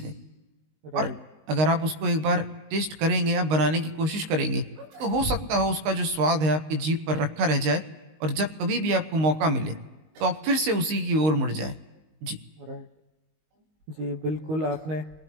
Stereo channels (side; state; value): left; late; 19 ms